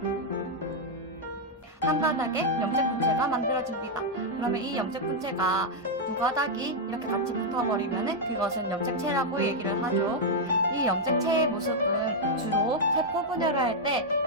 한 가닥의 염색 분체가 만들어집니다. 그러면 이 염색 분체가 두 가닥이 이렇게 같이 붙어버리면 그것은 염색체라고 얘기를 하죠. 이 염색체의 모습은 주로 세포 분열을 할 때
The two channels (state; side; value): normal; both; correlation -0.02